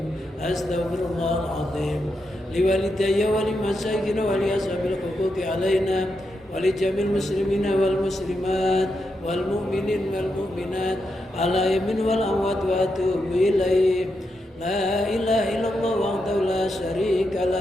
Astaghfirullahal azim. Liwalidayya wa limasyayikhina wa li ashabil huquqi 'alaina wa li jamil muslimina wal muslimat wal mu'minin wal mu'minat ala yamin wal amwat wa atubu ilaih. La ilaha illallah wahdahu la syarika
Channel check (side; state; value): both; normal; correlation 0.85